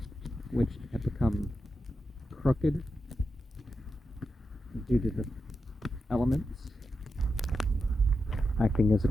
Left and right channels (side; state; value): both; normal; correlation 0.88